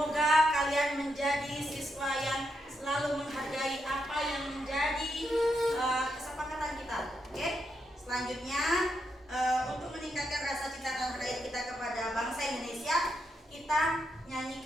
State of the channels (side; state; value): both; normal; correlation 0.82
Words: kalian menjadi siswa yang selalu menghargai apa yang menjadi kesepakatan kita. Oke? Selanjutnya untuk meningkatkan rasa cinta tanah air kita kepada bangsa Indonesia, kita